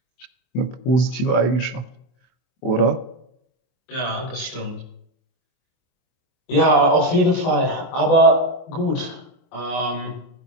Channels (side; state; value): right; late; 24 ms